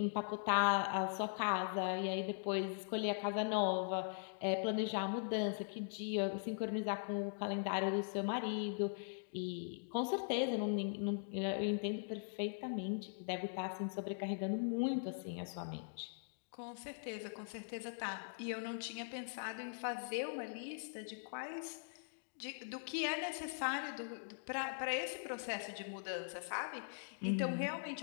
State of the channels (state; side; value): silent; right; digital silence